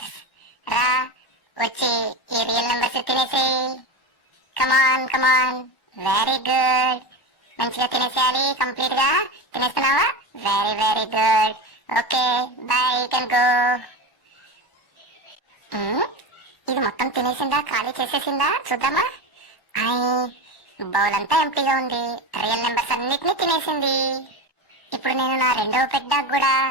రా వచ్చి ఈ రియల్ నెంబర్స్ తినేసేయి. Come on come on, very good. మంచిగా తినేసేయాలి, కంప్లీట్ గా తినేస్తున్నావా? Very very good. Okay bye, you can go. ఇది మొత్తం తినేసిందా, ఖాళీ చేసేసిందా? చూద్దామా. బౌల్ అంతా ఎంప్టీగా ఉంది, రియల్ నెంబర్స్ అన్నిటినీ తినేసింది. ఇప్పుడు నేను నా రెండవ పెద్ద కూడా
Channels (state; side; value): late; right; 1.1 ms